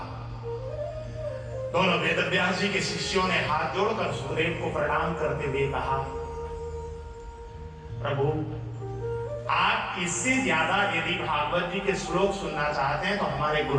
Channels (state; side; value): identical; both; correlation 1.00